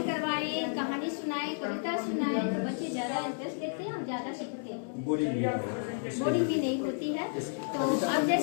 करवाए कहानी सुनाए कविता सुनाए तो बच्चे ज्यादा इंटरेस्ट लेते हैं और ज्यादा सीखते हैं। बोरिंग भी नहीं होती है। तो अब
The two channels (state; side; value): silent; right; digital silence